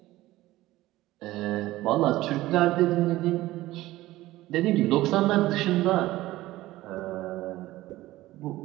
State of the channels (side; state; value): left; quieter; 16.8 dB